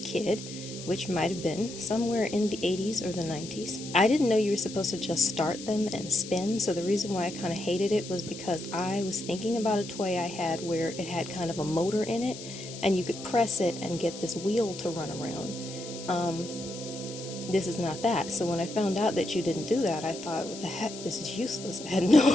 kid, which might have been somewhere in the 80s or the 90s. I didn't know you were supposed to just start them and spin, so the reason why I kind of hated it was because I was thinking about a toy I had where it had kind of a motor in it, and you could press it and get this wheel to run around. This is not that. So when I found out that you didn't do that, I thought, what the heck, this is useless. I had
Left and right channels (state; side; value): noise; left; hiss, 12 dB below the sound